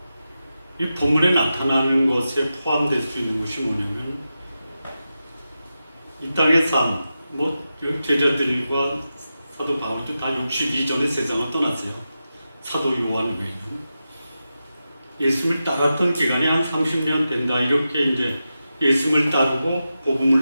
이 본문에 나타나는 것에 포함될 수 있는 것이 뭐냐면 이 땅의 삶, 제자들과 사도 바울도 다 62전에 세상을 떠났어요. 사도 요한 외에는. 예수님을 따랐던 기간이 한 30년 된다. 이렇게 이제 예수님을 따르고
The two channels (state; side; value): inverted; both; correlation -0.91